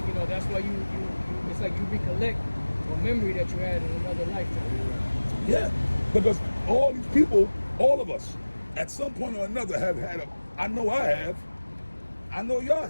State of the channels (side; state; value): both; inverted; correlation -1.00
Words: You know, that's why you it's like you recollect a memory that you had in another lifetime. Yeah, because all these people, all of us, at some point or another have had I know I have. I know y'all